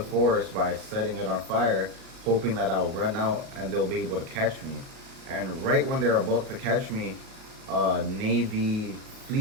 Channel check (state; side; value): late; left; 38 ms